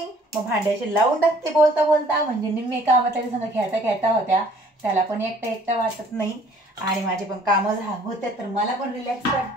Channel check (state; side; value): normal; both; correlation 0.56